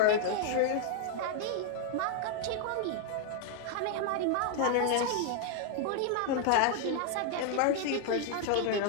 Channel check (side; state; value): both; different; correlation 0.00